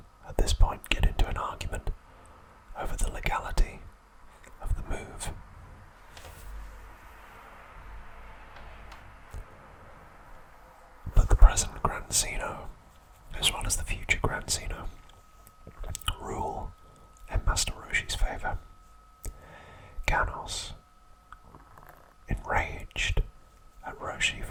at this point get into an argument over the legality of the move. But the present Grand Zeno, as well as the future Grand Zeno, rule in Master Roshi's favour. Ganos, enraged at Roshi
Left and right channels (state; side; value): identical; both; correlation 1.00